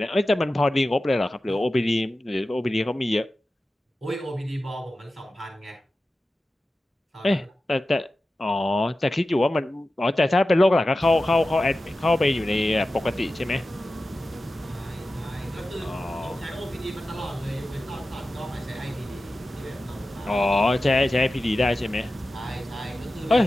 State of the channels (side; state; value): both; normal; correlation 0.94